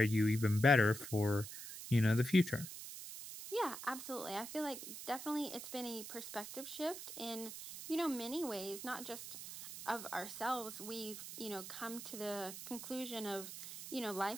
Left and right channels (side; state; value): right; noise; hiss, 10 dB below the sound